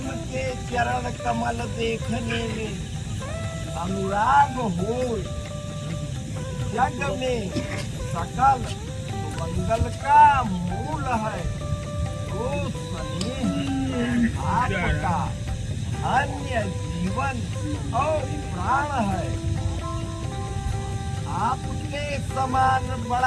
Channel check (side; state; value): both; identical; correlation 1.00